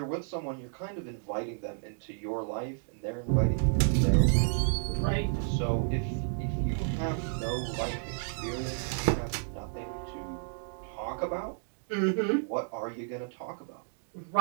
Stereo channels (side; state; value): left; silent; digital silence